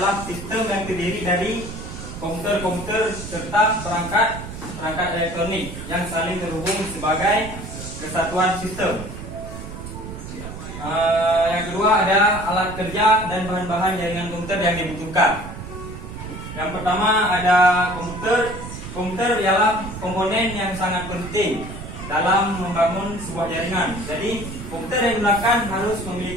sistem yang terdiri dari komputer-komputer serta perangkat elektronik yang saling terhubung sebagai kesatuan sistem. Yang kedua ada alat kerja dan bahan-bahan jaringan komputer yang dibutuhkan. Yang pertama ada komputer. Komputer ialah komponen yang sangat penting dalam membangun sebuah jaringan. Jadi komputer yang digunakan harus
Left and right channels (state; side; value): noise; right; rumble, 10 dB below the sound